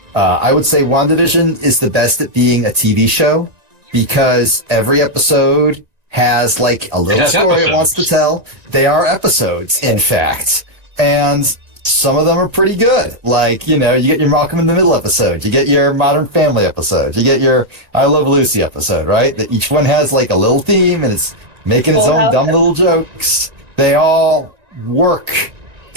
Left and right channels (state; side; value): late; left; 1.9 ms